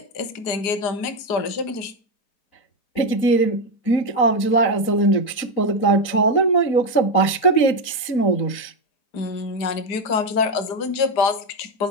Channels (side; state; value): right; late; 4.0 ms